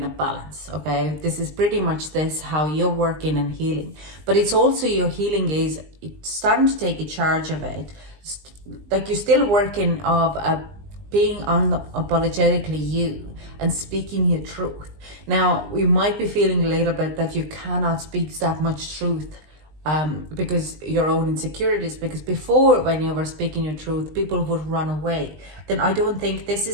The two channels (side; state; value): left; late; 20 ms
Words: a balance, okay? This is pretty much this, how you're working and healing. But it's also your healing is starting to take a charge of it. Like you're still working of being unapologetically you and speaking your truth. Now, you might be feeling a little bit that you cannot speak that much truth because your own insecurities, because before when you were speaking your truth, people would run away. Then I don't think this